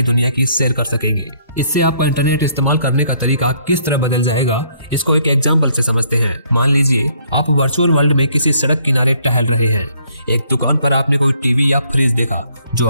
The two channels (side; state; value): both; inverted; correlation -0.66